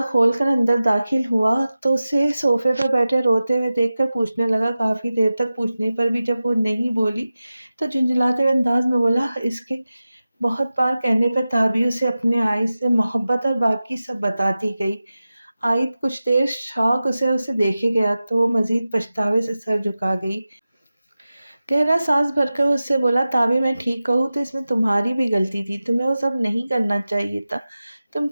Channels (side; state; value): both; inverted; correlation -0.94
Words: खोलकर अंदर दाखिल हुआ तो उसे सोफे पर बैठे रोते हुए देखकर पूछने लगा। काफ़ी देर तक पूछने पर भी जब वो नहीं बोली तो झुंझलाते हुए अंदाज में बोला। इसके बहुत बार कहने पर ताबी उसे अपने आइस से मोहब्बत और बाकी सब बताती गई। आयत कुछ देर शौक उसे उसे देखे गया तो वो मजीद पछतावे से सर झुका गई। गहरा सांस भरकर उससे बोला, ताबी मैं ठीक कहूँ तो इसमें तुम्हारी भी गलती थी, तुम्हें वो सब नहीं करना चाहिए था। तुम